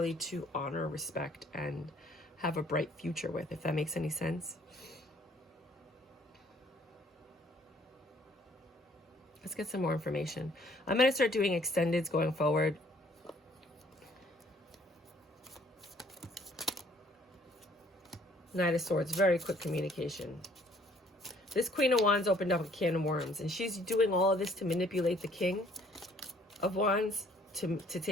to honor, respect, and have a bright future with, if that makes any sense. Let's get some more information. I'm going to start doing extendeds going forward. Knight of Swords, very quick communication. This Queen of Wands opened up a can of worms, and she's doing all of this to manipulate the King of Wands to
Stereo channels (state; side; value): normal; both; correlation 0.61